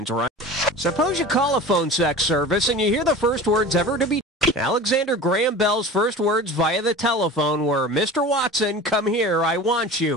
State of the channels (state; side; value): normal; both; correlation 0.36